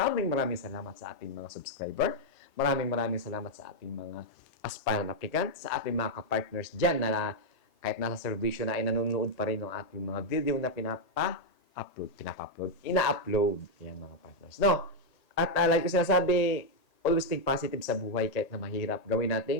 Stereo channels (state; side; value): late; right; 1.8 ms